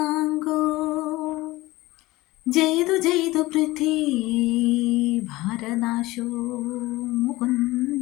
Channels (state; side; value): quieter; right; 19.4 dB